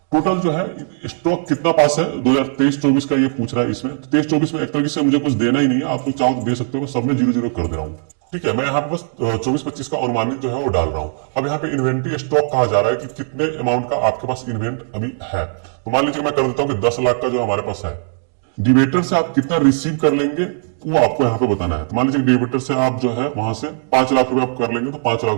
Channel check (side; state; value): left; silent; digital silence